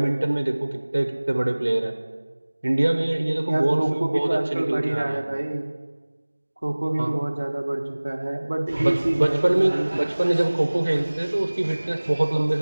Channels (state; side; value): inverted; both; correlation -1.00